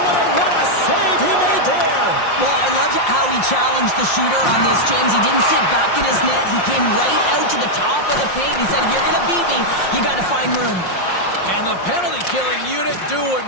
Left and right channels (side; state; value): right; late; 5.6 ms